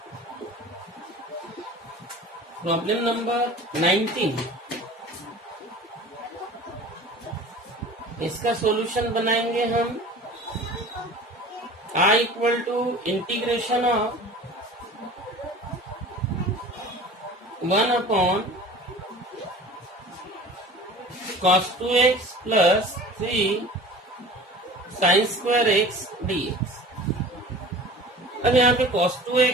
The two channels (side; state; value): both; normal; correlation 0.41